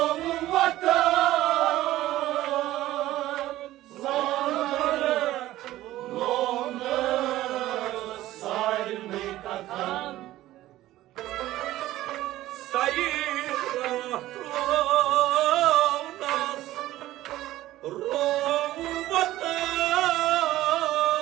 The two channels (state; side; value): quieter; left; 15.3 dB